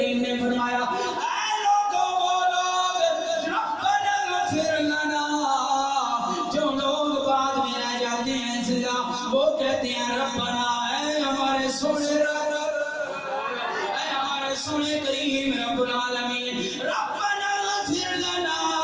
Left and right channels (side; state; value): both; identical; correlation 1.00